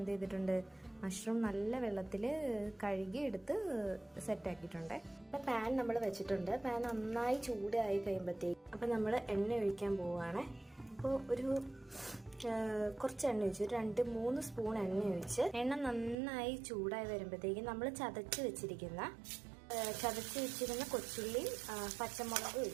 ചെയ്തിട്ടുണ്ട്, മഷ്റൂം നല്ല വെള്ളത്തിൽ കഴുകി എടുത്ത് സെറ്റാക്കിയിട്ടുണ്ട്. അപ്പം പാൻ നമ്മൾ വെച്ചിട്ടുണ്ട്. പാൻ നന്നായി ചൂടായി കഴിയുമ്പോഴത്തേക്ക് അപ്പം നമ്മൾ എണ്ണ ഒഴിക്കാൻ പോവുകയാണ്. അപ്പോൾ ഒരു കുറച്ച് എണ്ണ ഒഴിച്ച്, ഒരു 2-3 സ്പൂൺ എണ്ണ ഒഴിച്ച്, എണ്ണ നന്നായി ചൂടായി വരുമ്പോഴത്തേക്കും നമ്മൾ ചതച്ച് വെച്ചിരിക്കുന്ന കൊച്ചുള്ളിയും പച്ചമുളകും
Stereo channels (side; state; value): left; drops out; at 16.2 s